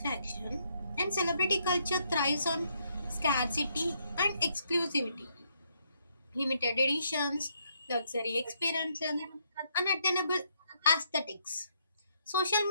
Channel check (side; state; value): both; inverted; correlation -0.73